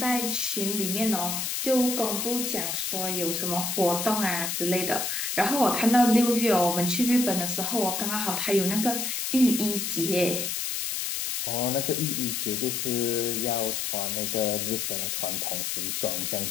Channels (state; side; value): noise; left; hiss, 2 dB below the sound